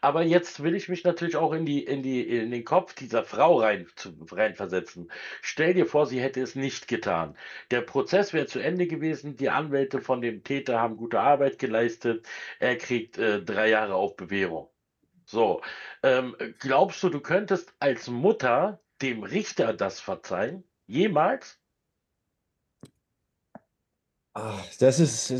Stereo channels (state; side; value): identical; both; correlation 1.00